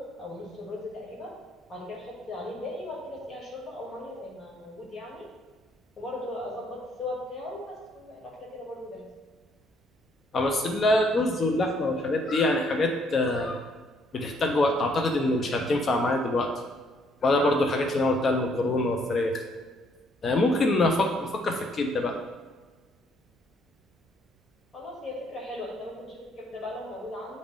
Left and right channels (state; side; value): normal; both; correlation 0.67